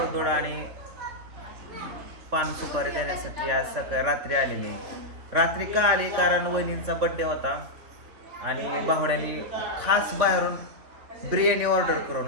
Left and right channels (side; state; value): left; late; 3.4 ms